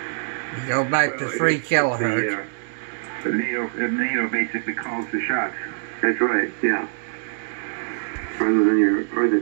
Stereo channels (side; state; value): left; silent; digital silence